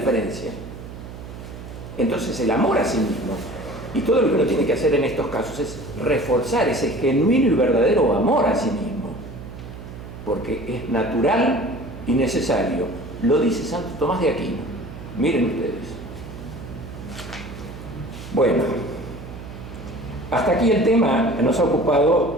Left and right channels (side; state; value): right; noise; hum, 12 dB below the sound